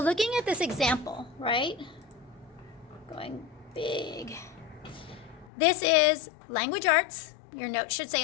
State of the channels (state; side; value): drops out; right; at 5.5 s